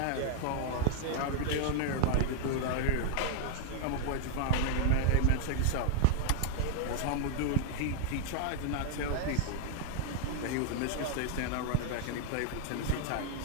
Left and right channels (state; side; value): different; both; correlation -0.01